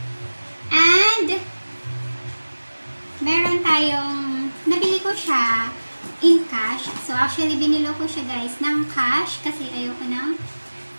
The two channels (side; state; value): both; inverted; correlation -1.00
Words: And meron tayong nabili ko siya in cash. So, actually, binilo ko siya, guys, ng cash kasi ayoko nang